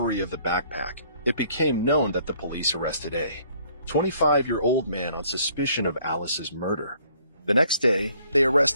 of the backpack, it became known that the police arrested a 25-year-old man on suspicion of Alice's murder. The next day, they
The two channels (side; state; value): both; inverted; correlation -0.62